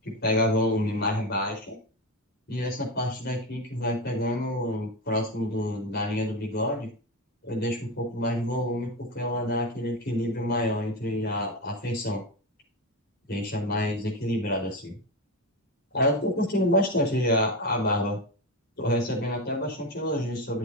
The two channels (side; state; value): both; normal; correlation 0.17